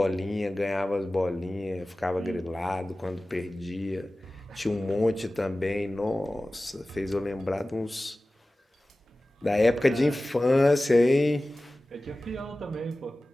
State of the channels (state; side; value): normal; both; correlation 0.97